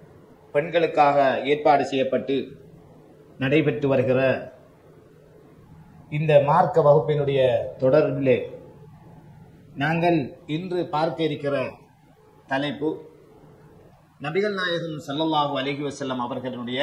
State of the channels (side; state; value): both; identical; correlation 1.00